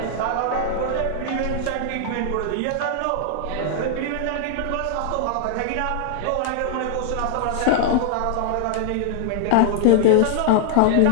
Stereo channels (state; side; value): different; both; correlation 0.00